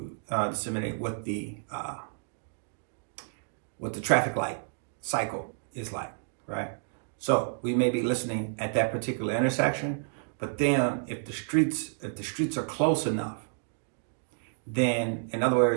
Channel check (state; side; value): silent; left; digital silence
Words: disseminate what the traffic light cycle is like, right? So we may be listening at that particular intersection, but then if the streets are close enough, then in other